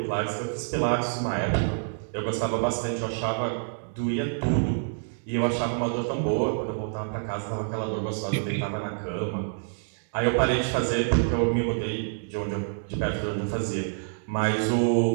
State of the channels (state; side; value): silent; left; digital silence